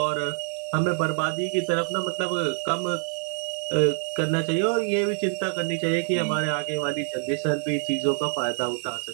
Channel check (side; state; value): left; silent; digital silence